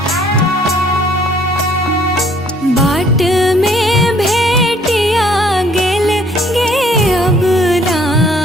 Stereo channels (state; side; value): normal; both; correlation 0.61